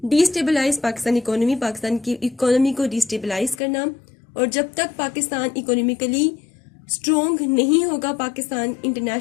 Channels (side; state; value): right; drops out; at 3.6 s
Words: Destabilize Pakistan economy, Pakistan کی اکانومی کو ڈی اسٹیبلائز کرنا. اور جب تک پاکستان اکانومیکلی اسٹرانگ نہیں ہوگا پاکستان